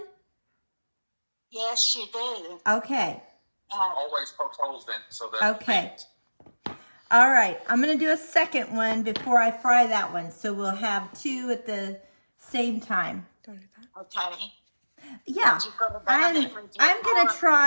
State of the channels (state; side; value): inverted; both; correlation -1.00